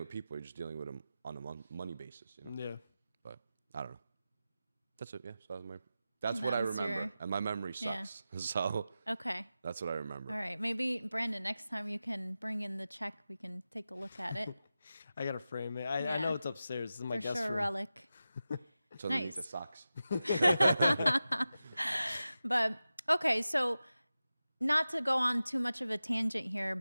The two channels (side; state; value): both; inverted; correlation -0.93